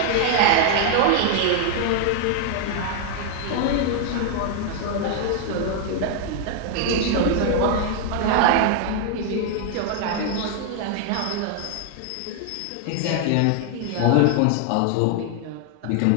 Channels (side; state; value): both; different; correlation 0.00